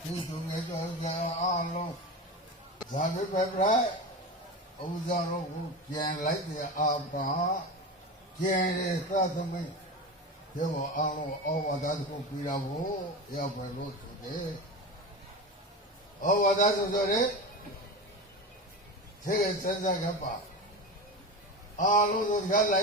ဒီသူငယ်တော်ကအားလုံးဇာတိပဲပြဲဥဇာတို့ကိုကျန်လိုက်တဲ့အာဘာကျန်တဲ့သသမိတ်ဒီဘောအားလုံးဩဝါဒကိုပြီးတာကိုရောက်ပဲလို့ဆိုတယ်ဩဝါဒဆိုတော့လေသေစံစားကပါအားလုံးတို့ကလို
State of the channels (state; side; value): normal; both; correlation 0.25